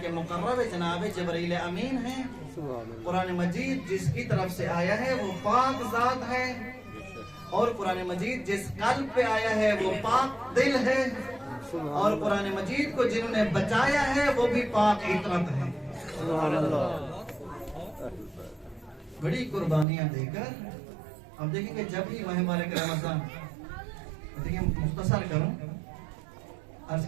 मुकर्रब जनाब जिब्रील अमीन है। कुरान मजीद जिसकी तरफ से आया है वो पाक जात है, और कुरान मजीद जिस कल्ब पे आया है वो पाक दिल है, और कुरान मजीद को जिन्होंने बचाया है वो भी पाक इतरत है। बड़ी कुर्बानियां देकर अब देखेंगे जब भी माह मुबारक रमजान, देखिए मुख्तसर करूं, अर्ज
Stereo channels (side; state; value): left; drops out; at 19.9 s